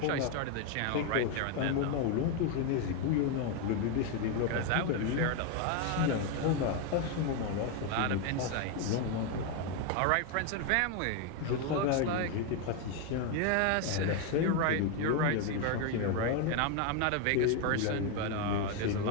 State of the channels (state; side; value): different; both; correlation 0.01